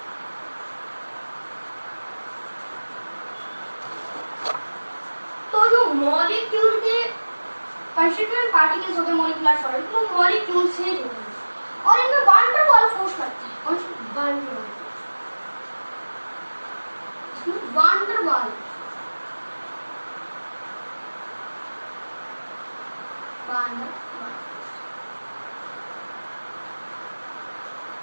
तो जो मॉलिक्यूल के कंस्टिट्यूएंट पार्टिकल्स होते हैं मॉलिक्यूलर सॉलिड, वो मॉलिक्यूल से जुड़े हैं और इनमें वान डर वाल फोर्स लगती है। कौन सी? वान डर वाल। इसमें वान डर वाल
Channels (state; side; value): inverted; both; correlation -1.00